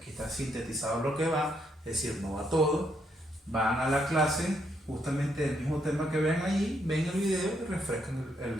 está sintetizado lo que va, es decir, no va todo. Van a la clase, justamente el mismo tema que ven allí, ven el video y refrescan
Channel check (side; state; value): both; normal; correlation 0.76